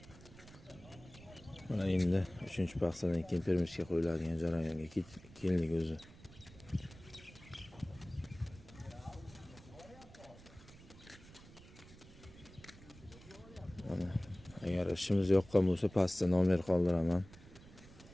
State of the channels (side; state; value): right; noise; rumble, 20 dB below the sound